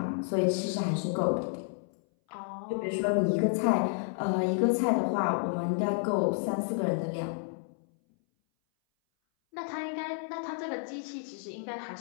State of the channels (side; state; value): right; silent; 57 dB below the other